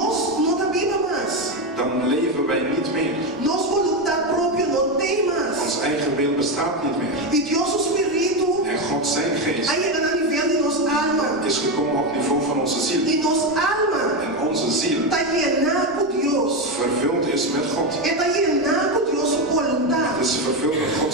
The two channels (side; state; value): both; normal; correlation 0.12